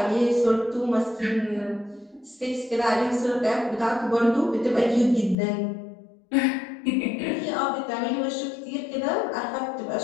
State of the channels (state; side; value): drops out; right; at 5.4 s